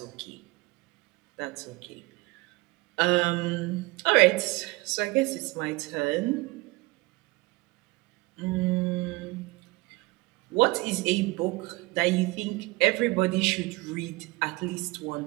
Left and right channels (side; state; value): left; quieter; 22.5 dB